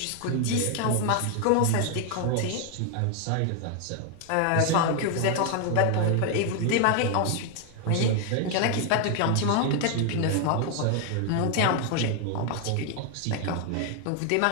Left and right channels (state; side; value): different; both; correlation 0.00